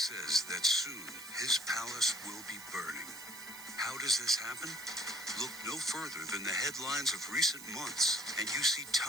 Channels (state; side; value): noise; right; hiss, 14 dB below the sound